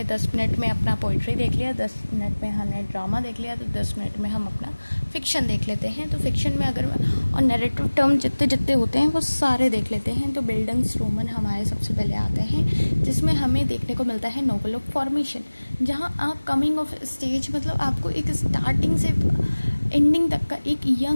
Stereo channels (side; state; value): both; inverted; correlation -1.00